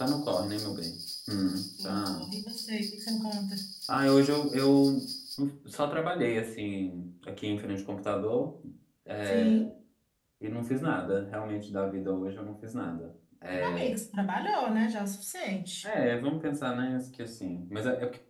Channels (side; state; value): both; identical; correlation 1.00